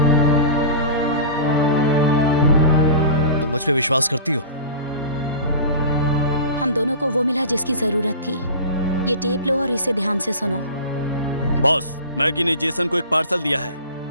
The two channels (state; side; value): inverted; both; correlation -0.36